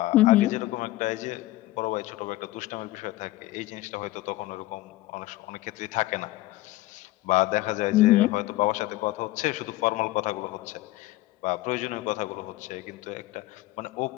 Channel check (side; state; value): right; quieter; 17.6 dB